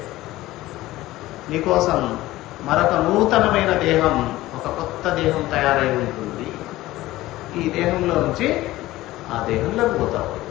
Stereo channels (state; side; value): quieter; right; 17.0 dB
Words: నీకోసం మరొక నూతనమైన దేహం, ఒక కొత్త దేహం తయారై ఉంటుంది. ఈ దేహంలో నుంచి ఆ దేహంలోకి పోతావు,